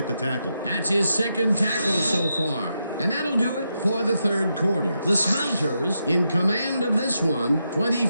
the tackle. That's his 2nd tackle so far. And that'll do it for the 3rd quarter. The Smelters in command of this one,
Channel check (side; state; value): both; inverted; correlation -0.84